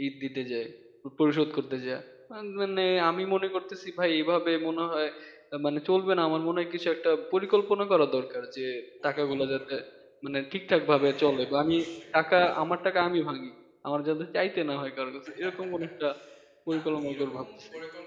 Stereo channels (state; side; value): identical; both; correlation 1.00